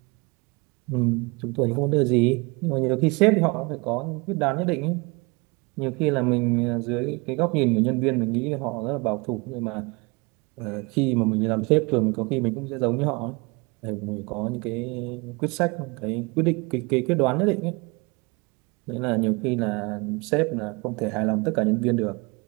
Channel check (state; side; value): quieter; left; 27.7 dB